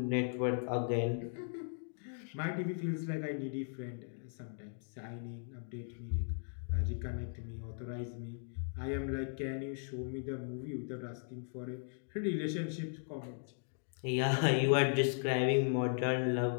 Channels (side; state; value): right; silent; digital silence